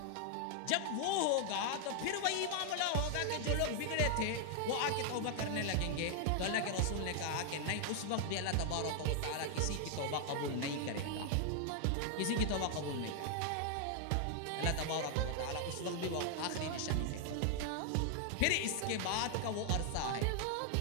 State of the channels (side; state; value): both; different; correlation 0.00